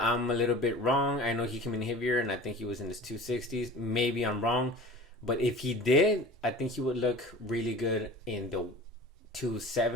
a little bit wrong. I know he came in heavier, and I think he was in his 260s. Maybe I'm wrong, but if he did, I think he would look really good in the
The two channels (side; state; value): both; normal; correlation 0.40